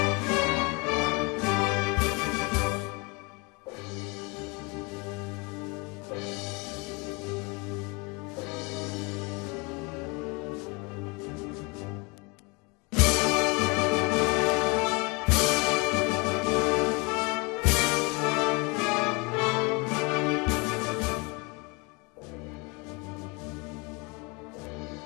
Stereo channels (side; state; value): right; quieter; 28.9 dB